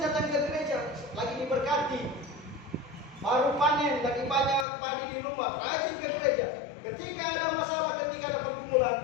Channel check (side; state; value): right; drops out; at 4.7 s